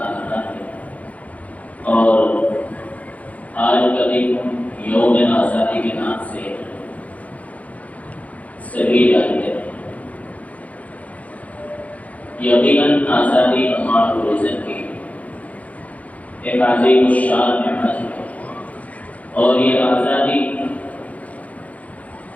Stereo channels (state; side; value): late; right; 0.069 ms